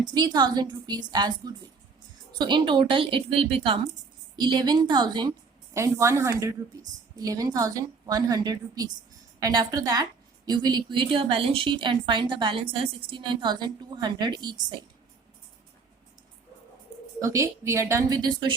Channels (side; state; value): left; quieter; 4.7 dB